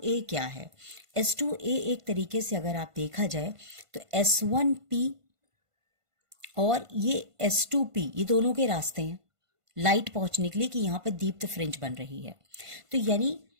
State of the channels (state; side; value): late; left; 1.5 ms